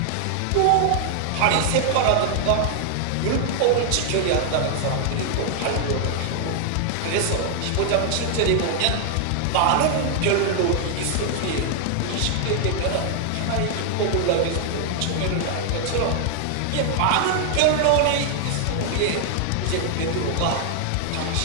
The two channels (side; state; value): both; different; correlation 0.00